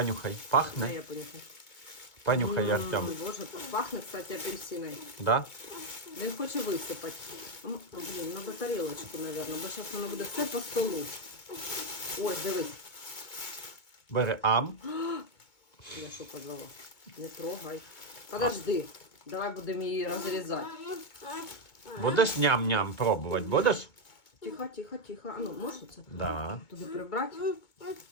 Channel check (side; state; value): right; late; 2.2 ms